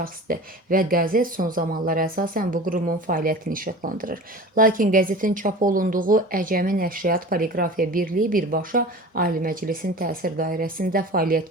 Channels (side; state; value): both; normal; correlation 0.37